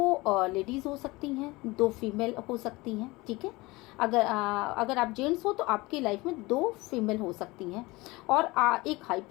लेडीज़ हो सकती हैं, दो फीमेल हो सकती हैं, ठीक है। अगर आप जेंट्स हो तो आपकी लाइफ में दो फीमेल हो सकती हैं, और एक हाई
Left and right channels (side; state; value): right; quieter; 22.3 dB